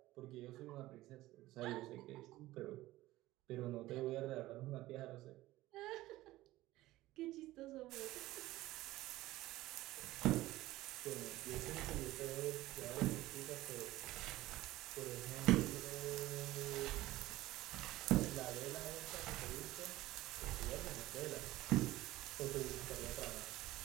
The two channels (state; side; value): quieter; left; 17.0 dB